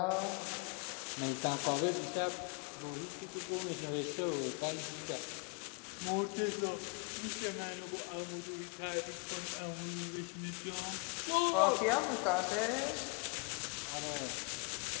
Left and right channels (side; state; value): right; quieter; 34.5 dB